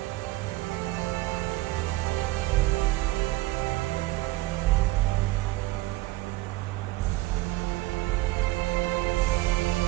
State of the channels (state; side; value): quieter; left; 19.0 dB